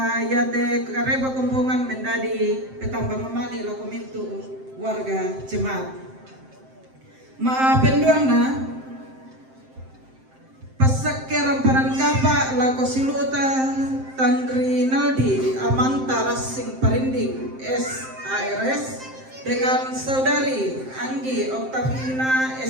yate kareba kumpungan mendadi petambang mamali lo kumintu warga jemaat. Maapenduang na pasake ramparan kapa lako siluta Tandri Naldi Amanta Rasing Parinding SARS dengan saudari Anggi Oktavina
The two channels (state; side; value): late; left; 7.6 ms